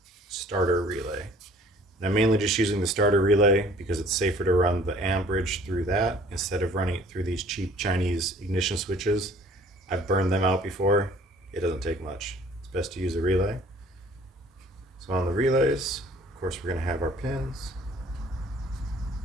starter relay. And I'm mainly just using the starter relay because it's safer to run the amperage through that instead of running it through these cheap Chinese ignition switches. I've burned them out before. It doesn't take much. It's best to use a relay. So on the relays, of course, we're going to have our pins.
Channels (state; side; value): normal; both; correlation 0.54